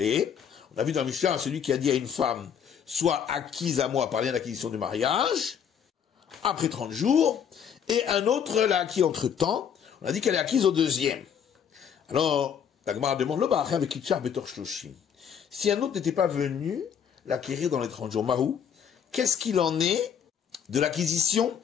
vu dans le Mishnah, celui qui a dit à une femme, soit acquise à moi par lien d'acquisition du mariage, après 30 jours, et un autre l'a acquis entre temps, on a dit qu'elle est acquise au deuxième. Alors, la Gemara demande, si un autre n'était pas venu l'acquérir dans les 30 jours, Mahou, qu'est-ce qu'il en est de l'acquisition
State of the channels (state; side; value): quieter; right; 8.0 dB